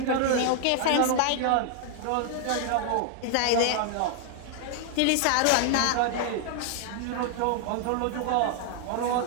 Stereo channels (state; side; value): different; both; correlation 0.00